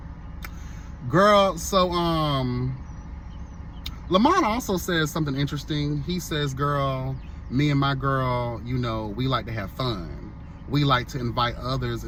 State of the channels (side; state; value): both; identical; correlation 1.00